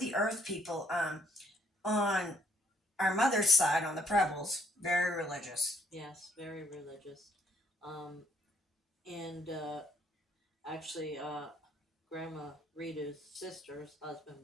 the earth people. On our mother's side, on the Prebles, very religious. Yes, very religious. And actually, Grandma Rita's sister's husband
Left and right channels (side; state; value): both; normal; correlation 0.68